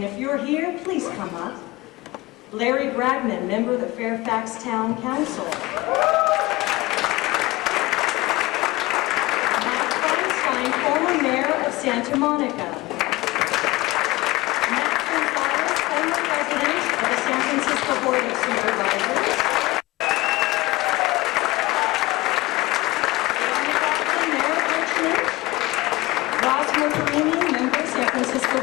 if you're here, please come up. Larry Bragman, member of the Fairfax Town Council. Matt Feinstein, former mayor of Santa Monica. Matt Gonzalez, former president of the San Francisco Board of Supervisors. Member, San Francisco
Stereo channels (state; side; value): quieter; right; 21.1 dB